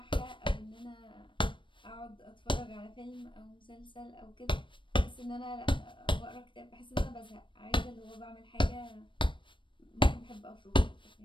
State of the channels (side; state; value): right; late; 0.24 ms